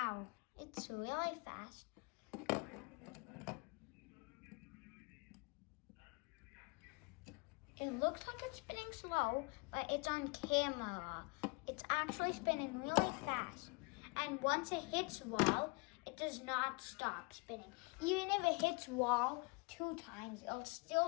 it's really fast. It looks like it's spinning slow, but it's on camera. It's actually spinning really fast. And once it hits wall, it does not stop spinning. Even if it hits wall 2 times, it'll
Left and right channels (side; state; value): right; quieter; 29.2 dB